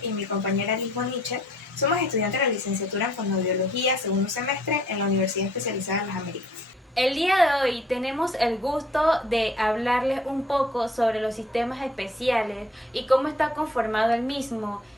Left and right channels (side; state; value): both; normal; correlation 0.58